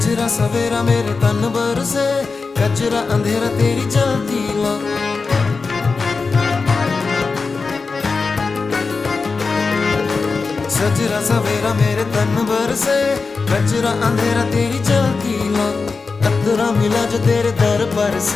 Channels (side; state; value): right; quieter; 4.4 dB